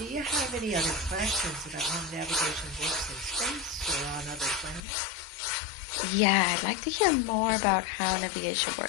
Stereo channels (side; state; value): right; drops out; at 4.8 s